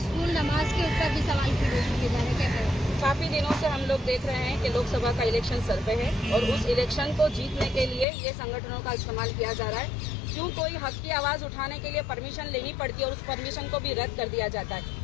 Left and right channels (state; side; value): drops out; right; at 8.1 s